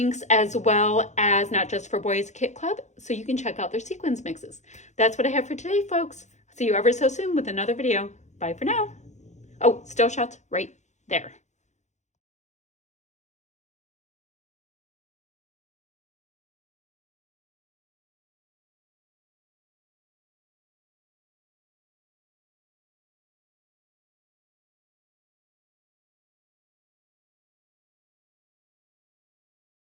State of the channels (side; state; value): right; late; 0.34 ms